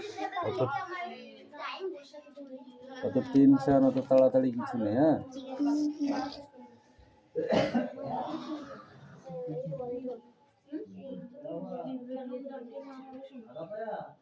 অত অত টেনশন, অত তাড়াতাড়ি কিছু নেই, হ্যাঁ?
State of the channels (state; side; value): identical; both; correlation 1.00